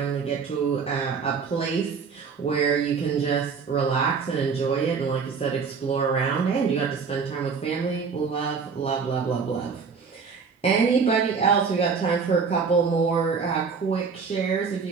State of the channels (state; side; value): quieter; left; 5.5 dB